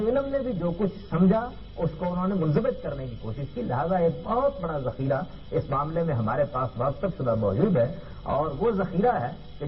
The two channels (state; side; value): identical; both; correlation 1.00